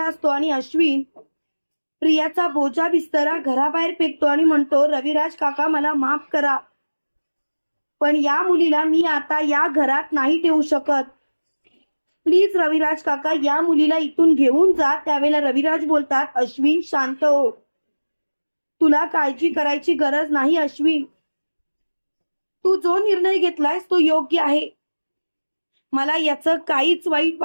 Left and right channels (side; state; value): both; inverted; correlation -1.00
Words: असतो आणि अश्विन प्रियाचा बोजा बिस्तरा घराबाहेर फेकतो आणि म्हणतो, रविराज काका मला माफ करा, पण या मुलीला मी आता या घरात नाही ठेवू शकत. प्लीज रविराज काका, या मुलीला इथून घेऊन जा. त्यावेळेला रविराज बोलतात, अश्विन शांत हो, तुला काळजी करायची गरज नाही. अश्विन, तू जो निर्णय घेतलायस तो योग्य आहे, मला याचं काहीच